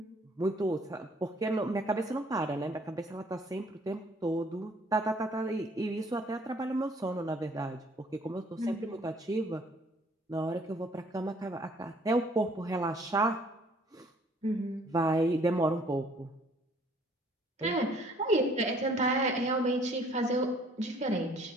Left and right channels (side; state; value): both; normal; correlation 0.60